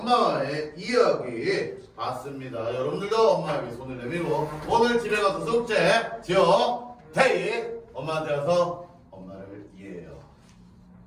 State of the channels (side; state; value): both; identical; correlation 1.00